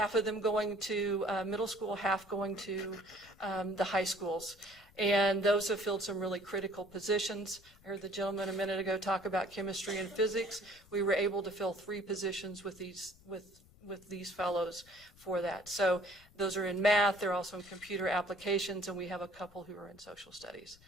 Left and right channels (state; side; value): noise; left; rumble, 27 dB below the sound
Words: of them going to middle school, half going to the high schools. And those have filled some really critical positions. I heard the gentleman a minute ago talk about chemistry and physics. We were able to fill 3 positions with these fellows for that. So those are in math, they're also in computer applications, and we have a couple who are in social studies.